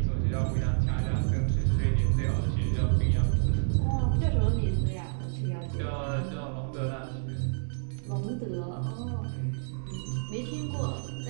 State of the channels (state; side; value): silent; left; digital silence